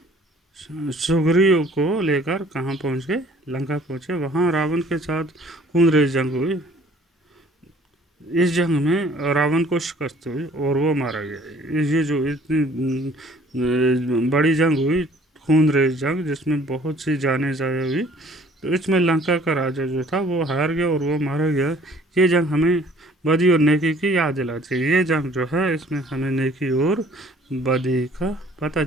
सुग्रीव को लेकर कहाँ पहुंच गए? लंका पहुंचे। वहाँ रावण के साथ खून रेज जंग हुई। इस जंग में रावण को शिकस्त हुई और वो मारा गया। ये जो इतनी बड़ी जंग हुई, खून रेज जंग, जिसमें बहुत सी जानें ज़ाया हुई, तो इसमें लंका का राजा जो था वो हार गया और वो मारा गया। ये जंग हमें बदी और नेकी की याद दिलाती है। ये जंग जो है, इसमें हमें नेकी और बदी का पता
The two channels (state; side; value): normal; both; correlation 0.55